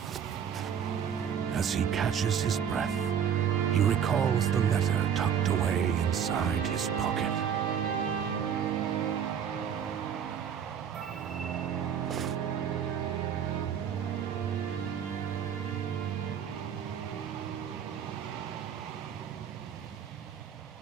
As he catches his breath, he recalls the letter tucked away inside his pocket.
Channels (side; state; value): left; quieter; 8.0 dB